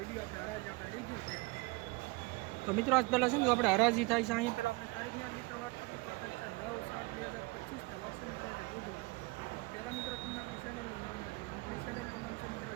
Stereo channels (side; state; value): left; quieter; 25.1 dB